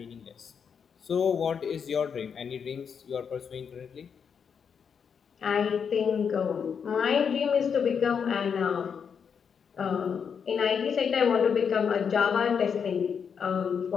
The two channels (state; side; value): quieter; right; 6.8 dB